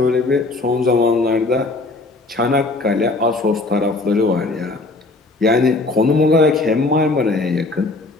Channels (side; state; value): right; quieter; 3.2 dB